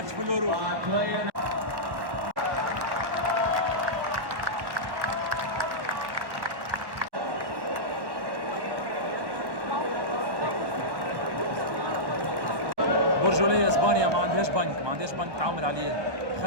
في اليورو. برجولية اسبانيا ما عندهاش بنك تعامل عليه.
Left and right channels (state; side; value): late; left; 1.1 ms